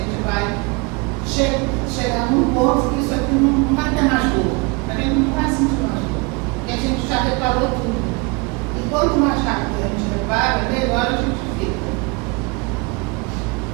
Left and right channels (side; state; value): left; quieter; 28.7 dB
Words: vai chegar num ponto que isso aqui não vai ter mais dor, a gente não vai sentir mais dor, porque a gente já reparou tudo. E quanto mais rápido a gente repara, melhor a gente fica.